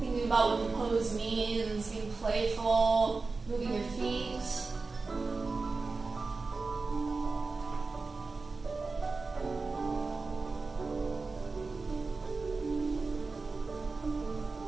about what the pose means, being playful, moving your feet.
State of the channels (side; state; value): left; quieter; 4.0 dB